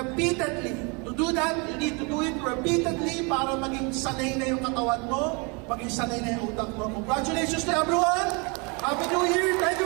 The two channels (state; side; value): quieter; left; 31.5 dB